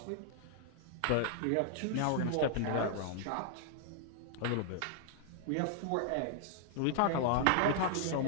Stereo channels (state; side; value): different; both; correlation 0.00